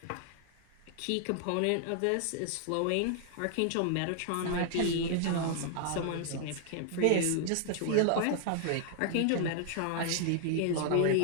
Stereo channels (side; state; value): both; different; correlation -0.01